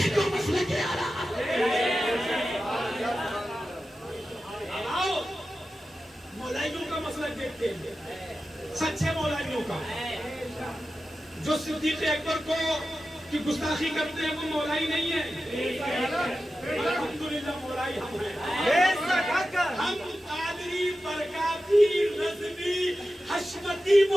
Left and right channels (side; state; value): both; normal; correlation 0.93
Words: को मसले के आला आओ मौलाइयों का मसला देखते हैं, सच्चे मौलाइयों का। जो सिद्दीक़ अकबर को की गुस्ताखी करते हैं वो मौलाई नहीं है। अल्हम्दुलिल्लाह मौलाई हम हैं। हम कादरी, बरकाती, रज़वी, हशमती